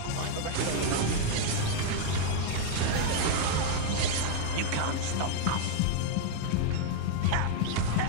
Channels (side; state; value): both; different; correlation 0.00